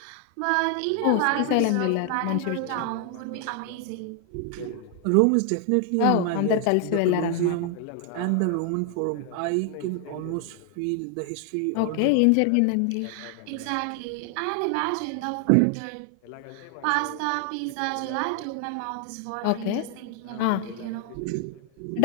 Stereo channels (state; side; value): different; both; correlation 0.00